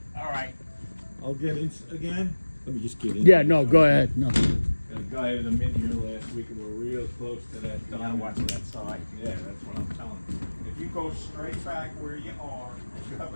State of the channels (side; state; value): both; inverted; correlation -1.00